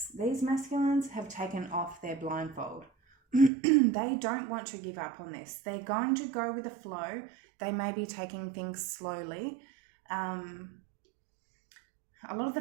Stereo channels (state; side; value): drops out; left; at 3.5 s